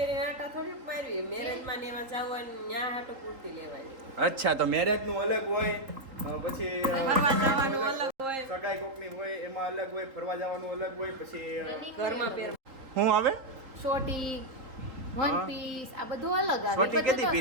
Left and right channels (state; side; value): late; left; 3.8 ms